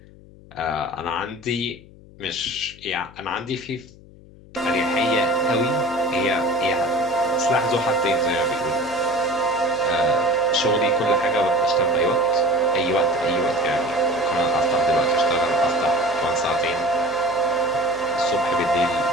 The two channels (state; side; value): noise; left; hum, 22 dB below the sound